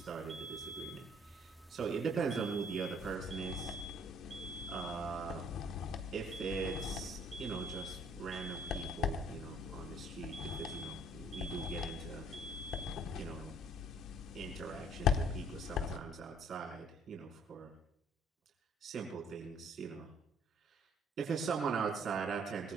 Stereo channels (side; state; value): both; normal; correlation 0.59